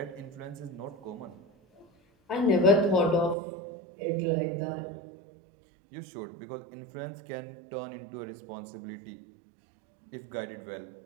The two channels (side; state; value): left; drops out; at 3.4 s